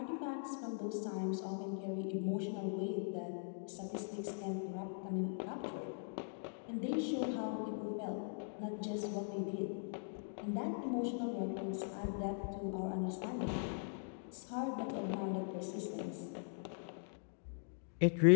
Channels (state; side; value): silent; right; digital silence